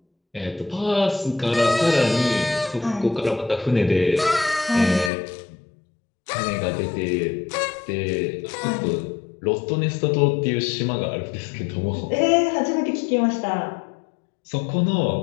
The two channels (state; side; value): drops out; right; at 5.1 s